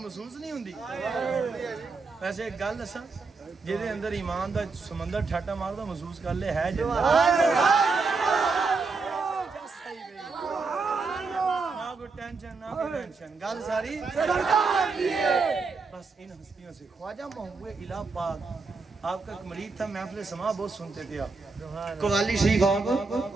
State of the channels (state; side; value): quieter; left; 4.3 dB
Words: محسوس نہیں ہوندی ویسے ایک گل دساں جہدے اندر ایمان دا سمندر ٹھاٹا ماردا محسوس کر لے ہے جنت ٹینشن نہ ٹینشن گل ساری بس ان ہستیوں سے خواجہ محبوب الہ پاک آپ کا ایک مرید تھا محفل سما بہت سنتے تھے آپ قوالی شریف آپ